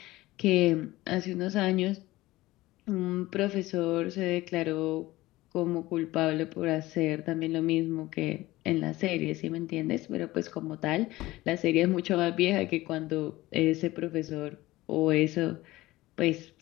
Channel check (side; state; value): right; quieter; 18.2 dB